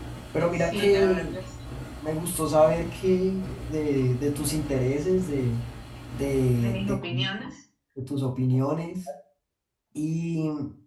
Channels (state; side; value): identical; both; correlation 1.00